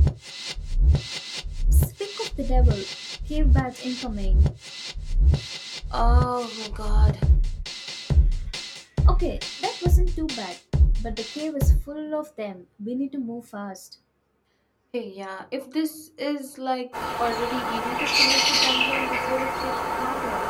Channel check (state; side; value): identical; both; correlation 1.00